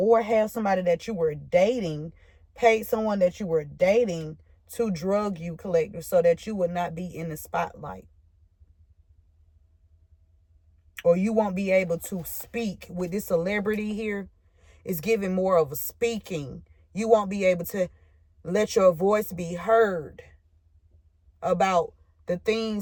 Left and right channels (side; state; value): both; identical; correlation 1.00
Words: have somebody that you were dating, paid someone that you were dating to drug you, collective, so that you would not be in the spotlight. Or you won't be able to speak with this celebrity here. It's giving more of a speaking. You won't be able to let your voice be heard about the